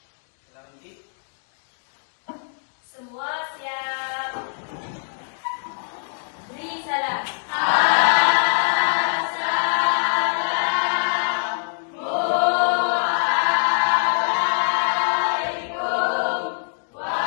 Silakan Uci. Semua siap. Beri salam.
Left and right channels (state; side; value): silent; right; digital silence